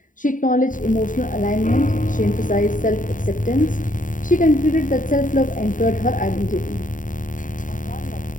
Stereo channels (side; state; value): right; late; 0.38 ms